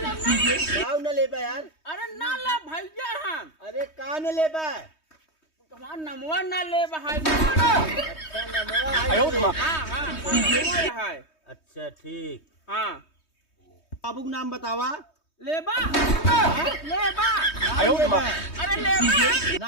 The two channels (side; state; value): right; late; 3.2 ms